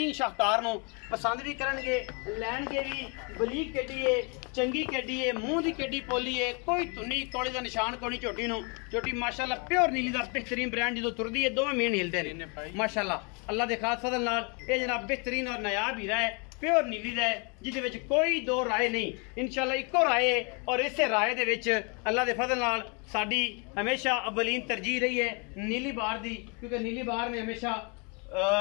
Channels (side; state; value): right; quieter; 33.9 dB